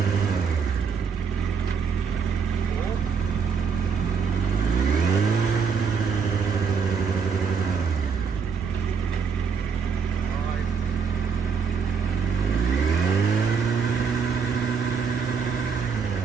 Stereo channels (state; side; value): quieter; left; 5.9 dB